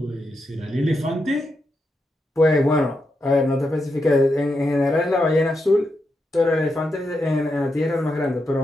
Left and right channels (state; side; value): normal; both; correlation 0.85